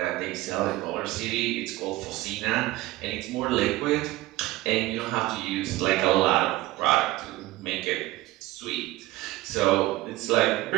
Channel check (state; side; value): quieter; left; 17.8 dB